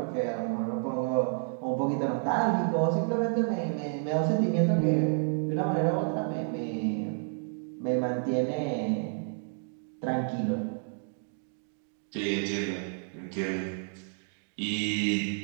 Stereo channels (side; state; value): left; silent; 58 dB below the other